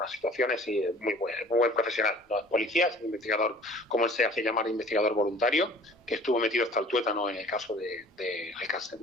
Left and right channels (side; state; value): both; normal; correlation 0.48